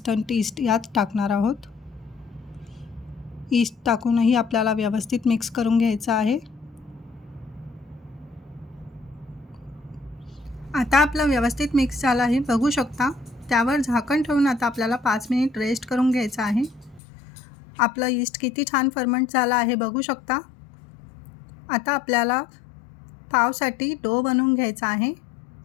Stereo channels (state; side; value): drops out; right; at 17.0 s